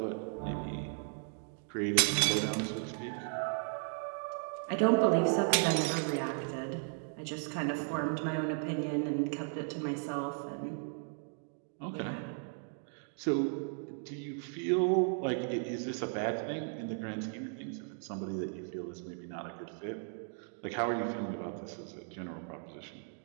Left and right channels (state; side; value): silent; left; 54 dB below the other